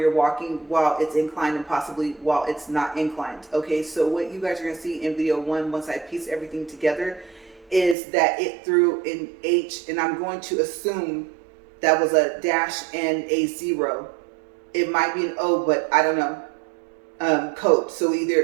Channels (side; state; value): left; drops out; at 8.0 s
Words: walking, while it's inclined, and possibly while it's not inclined. Okay, so what you guys are going to see in video 1, once I piece everything together, is that it threw an H, and I'm going to assume that was a dash and a 0. It might be an O, but I don't know, code. So